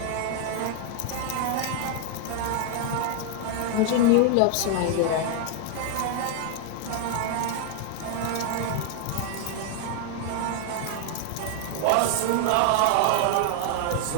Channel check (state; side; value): different; both; correlation 0.00